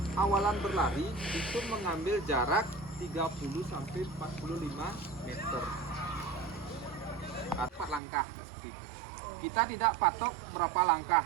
awalan berlari itu mengambil jarak 30 sampai 45 meter. 4 langkah. Kita tidak patok berapa langkah.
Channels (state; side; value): drops out; left; at 8.0 s